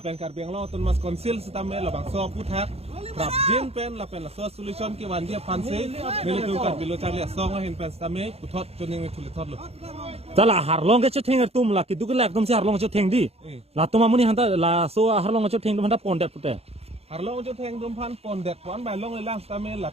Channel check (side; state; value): left; late; 0.29 ms